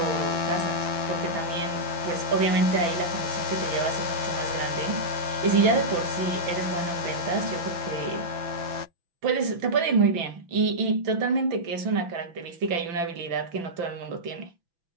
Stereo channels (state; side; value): late; left; 6.0 ms